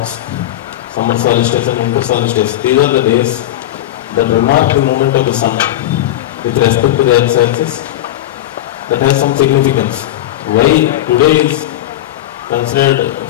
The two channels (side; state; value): right; quieter; 13.6 dB